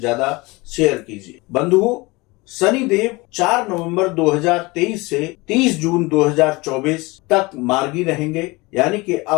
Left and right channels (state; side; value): quieter; right; 23.7 dB